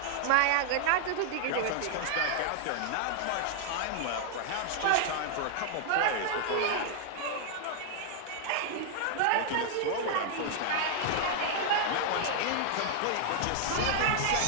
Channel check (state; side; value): different; both; correlation -0.01